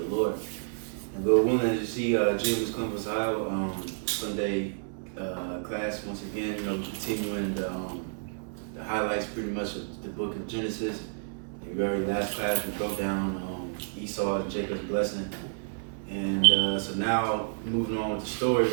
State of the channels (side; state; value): left; silent; 58 dB below the other